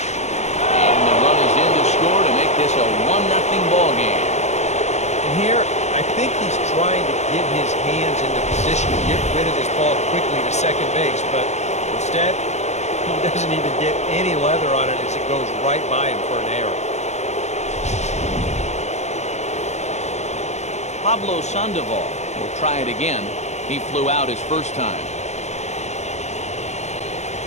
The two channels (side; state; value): right; late; 0.33 ms